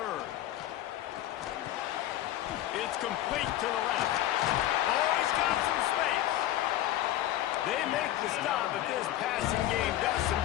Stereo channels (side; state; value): right; quieter; 13.7 dB